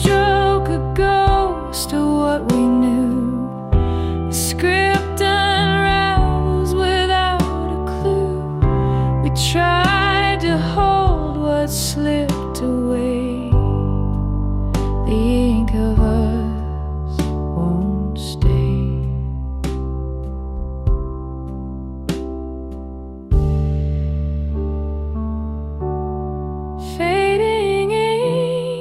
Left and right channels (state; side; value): identical; both; correlation 1.00